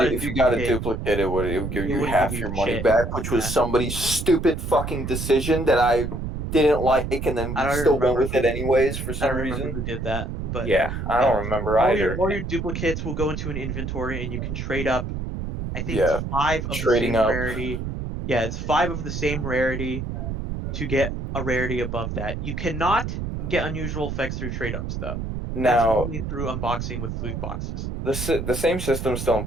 a if you got a duplicate, duplicate, it would give it you wouldn't give half you your money shit. back, which was Yeah, somebody's stupid fucking decision that I didn't like, and then I we don't still went remember with it anyways for I some don't remember reason. who did that, but Yeah, I yeah, don't remember either. all your duplicates will go into an inventory and you can trade up. I think it's Yeah, five of the trading same up. rarity. Yeah, it's five of the same rarity to get a rarity above that. You cannot get unusual effects through trade ups though. That's Now, only through unboxing with loot boxes. the same system's still in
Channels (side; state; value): right; noise; rumble, 4 dB below the sound